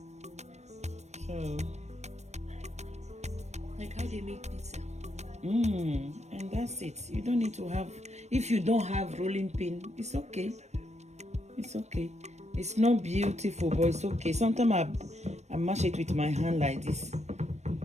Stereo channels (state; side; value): late; left; 0.32 ms